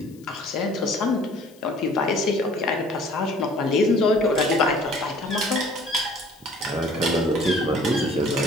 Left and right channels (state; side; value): noise; left; hiss, 28 dB below the sound